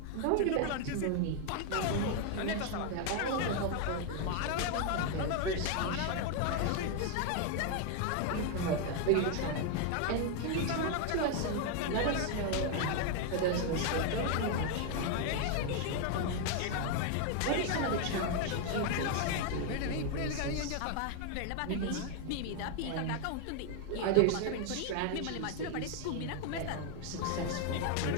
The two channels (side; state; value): both; different; correlation 0.01